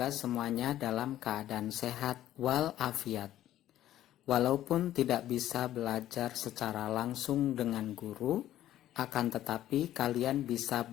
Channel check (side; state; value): right; quieter; 13.0 dB